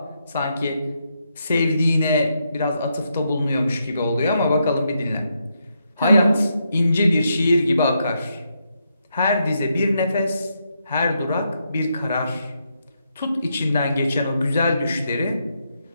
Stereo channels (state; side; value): inverted; both; correlation -0.80